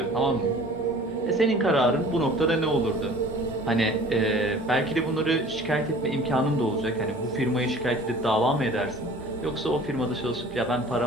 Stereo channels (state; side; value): normal; both; correlation 0.47